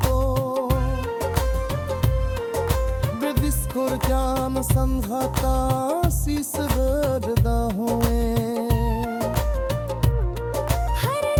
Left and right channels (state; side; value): identical; both; correlation 1.00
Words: बेदिस्कुर जान संघाता शीस गर्दा हुए। हर